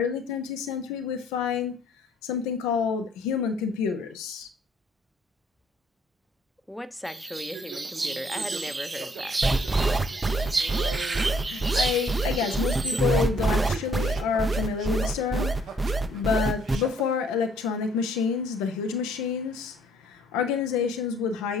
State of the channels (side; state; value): both; normal; correlation 0.64